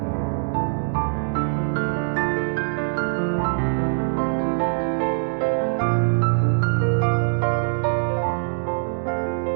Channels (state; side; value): silent; left; digital silence